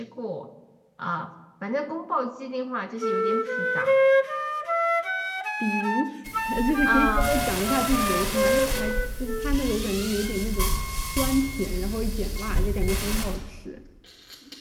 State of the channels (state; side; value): identical; both; correlation 1.00